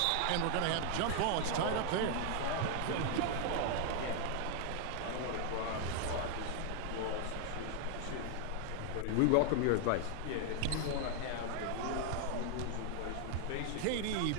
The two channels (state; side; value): different; both; correlation 0.00